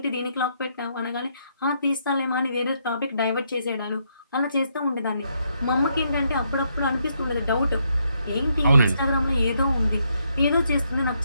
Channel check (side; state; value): both; inverted; correlation -0.76